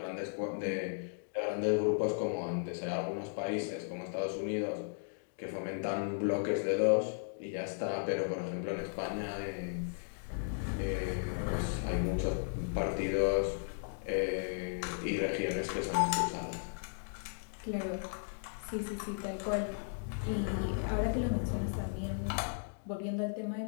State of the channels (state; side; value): silent; right; digital silence